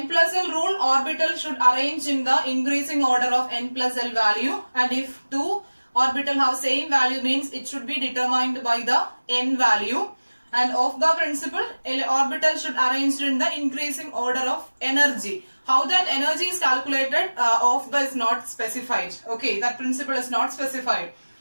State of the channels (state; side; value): inverted; both; correlation -1.00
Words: plus L rule, orbital should arrange in the increasing order of n plus L value, and if two orbital have same value means it should be determined by the n value. And Aufbau principle, orbital should arrange in the increasing order of energy. How that energy is calculated, Aufbau is not specified. Okay, that principle is not specified.